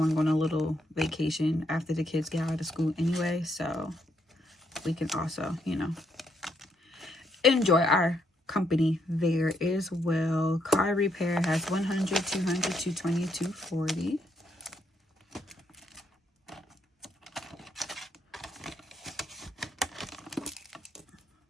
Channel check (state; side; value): normal; both; correlation 0.75